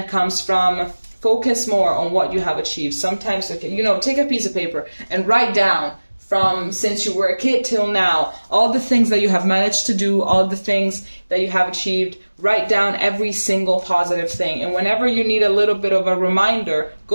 comes from. Focus more on what you have achieved. Sometimes, you know, take a piece of paper and write down from since you were a kid till now, all the things that you have managed to do, all the things that you have achieved. Write down every single positive thing. And whenever you need a little bit of a reminder,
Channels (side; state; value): both; inverted; correlation -1.00